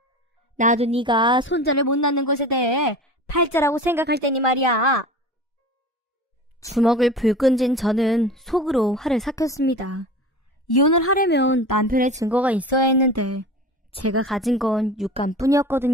나도 네가 손자를 못 낳는 것에 대해 팔자라고 생각할 테니 말이야. 주먹을 불끈 쥔 저는 속으로 화를 삭혔습니다. 이혼을 하려면 남편의 증거가 있어야 했는데 제가 가진 건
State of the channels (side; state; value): both; normal; correlation 0.35